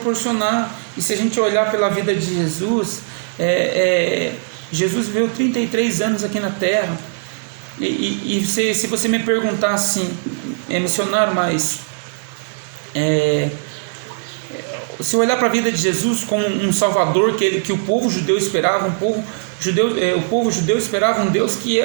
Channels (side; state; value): left; silent; digital silence